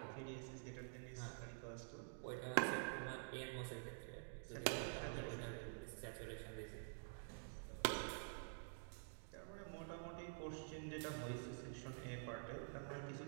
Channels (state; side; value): silent; left; digital silence